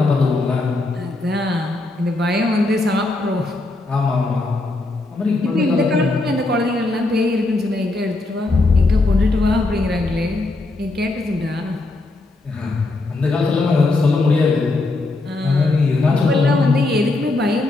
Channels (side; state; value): right; quieter; 3.1 dB